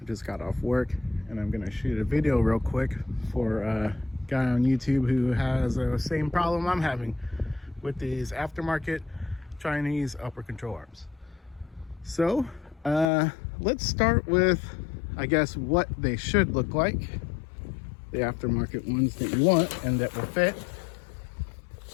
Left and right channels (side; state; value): right; drops out; at 13.1 s